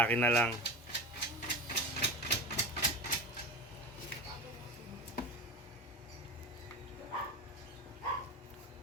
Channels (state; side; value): normal; both; correlation 0.28